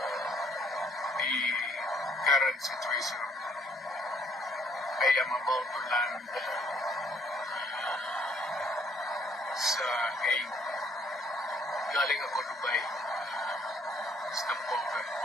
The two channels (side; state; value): both; normal; correlation 0.64